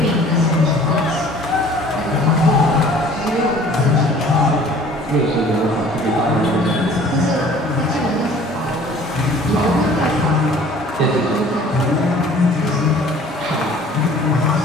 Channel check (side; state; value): both; normal; correlation 0.51